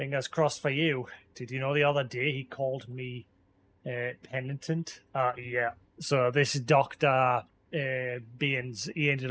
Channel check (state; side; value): identical; both; correlation 1.00